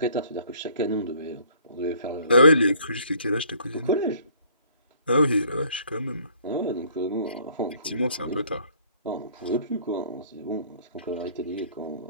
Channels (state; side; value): inverted; both; correlation -0.58